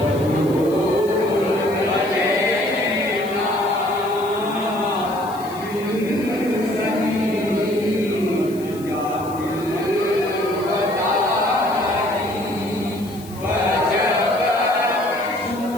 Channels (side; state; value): left; noise; hiss, 20 dB below the sound